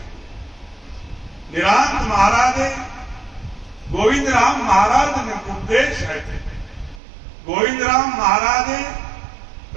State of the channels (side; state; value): left; drops out; at 7.0 s